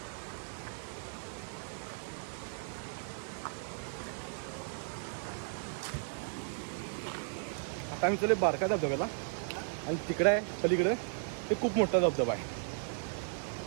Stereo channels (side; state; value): left; silent; digital silence